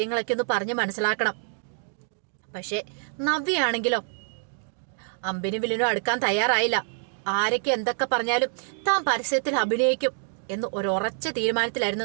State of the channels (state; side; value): silent; left; digital silence